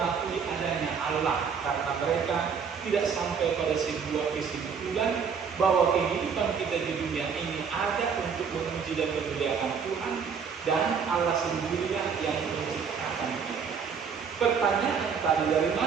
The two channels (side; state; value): left; quieter; 6.4 dB